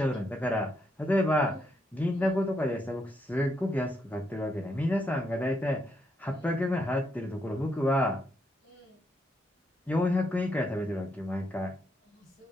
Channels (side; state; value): both; normal; correlation 0.78